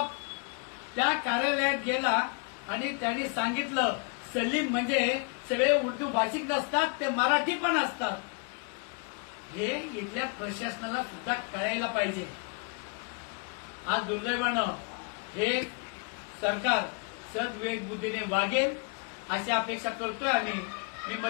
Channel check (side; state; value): right; quieter; 35.9 dB